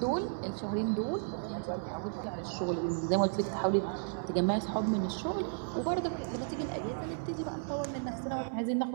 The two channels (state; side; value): silent; left; 55 dB below the other